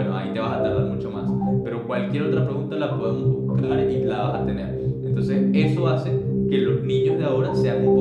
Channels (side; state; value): both; identical; correlation 1.00